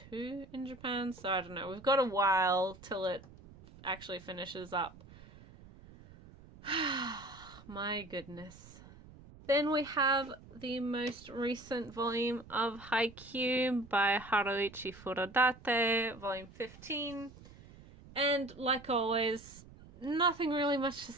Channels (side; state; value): right; noise; rumble, 20 dB below the sound